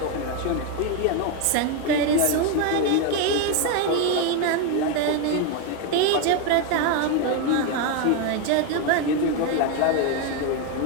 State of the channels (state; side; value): different; both; correlation 0.02